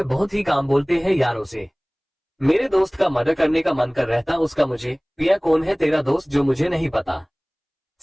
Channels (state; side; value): identical; both; correlation 1.00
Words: बहुत ही काम बोलते हैं यारों से। मेरे दोस्त का मर्डर करने का मन कर रहता उसका मुझे। पिया कौन है तेरा दोस्त जो मुझे नहीं पता?